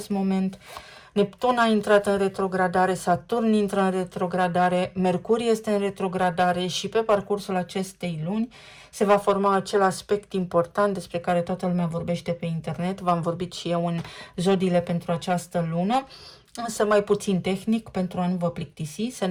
moment. Neptun a intrat în retrogradare, Saturn intră în retrogradare, Mercur este în retrogradare și pe parcursul acestei luni se va forma acel aspect important despre care toată lumea vorbește pe internet. V-am vorbit și eu în zodiile pentru această lună, însă mai puțin tehnic pentru a nu vă plictisi. Se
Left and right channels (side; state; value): both; identical; correlation 1.00